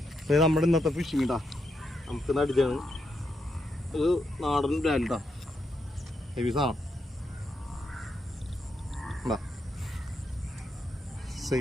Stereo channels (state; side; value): normal; both; correlation 0.82